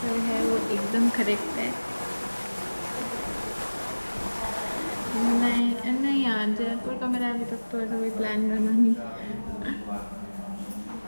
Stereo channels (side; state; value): both; inverted; correlation -1.00